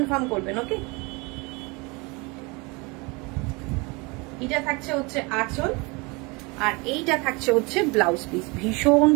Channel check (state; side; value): quieter; left; 27.6 dB